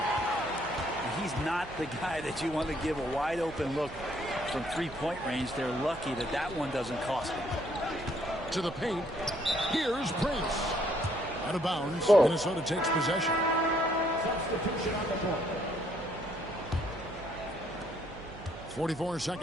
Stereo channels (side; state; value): right; noise; hum, 16 dB below the sound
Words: He's not the guy that you want to give a wide open look from 3-point range. They're lucky that that one doesn't cost them. To the paint. Here's Prince. Out of bounds. Minnesota takes possession. Substitution on the court. 44